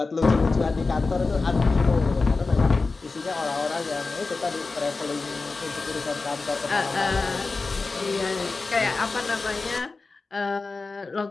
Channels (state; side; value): quieter; right; 3.9 dB